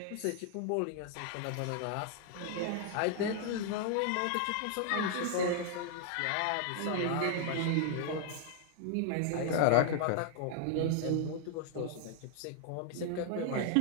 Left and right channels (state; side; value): different; both; correlation 0.00